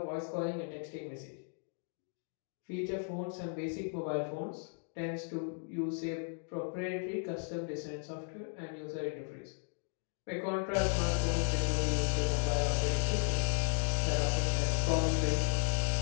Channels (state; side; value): silent; right; 54 dB below the other